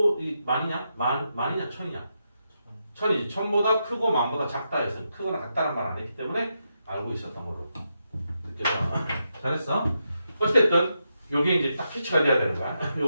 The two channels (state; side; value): inverted; both; correlation -0.84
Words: 만이냐 천이냐? 천이지. 천보다 크고 만보다 작다 해서 크거나 같다는 말 안 했기 때문에 알고 있었던 걸로 느껴져. 잘했어. 어쨌든 요게 이제 딱 캐치가 돼야 되는 거야.